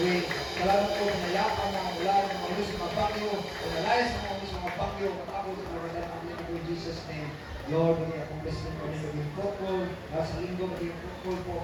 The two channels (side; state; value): both; identical; correlation 1.00